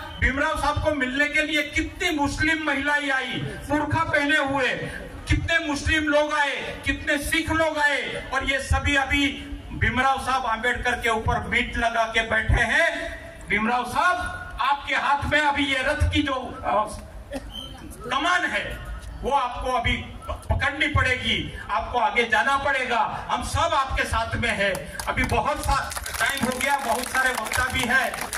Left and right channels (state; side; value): identical; both; correlation 1.00